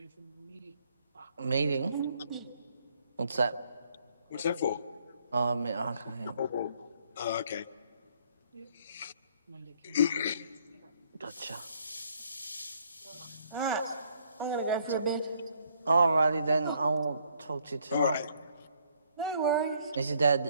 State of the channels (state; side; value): inverted; both; correlation -0.67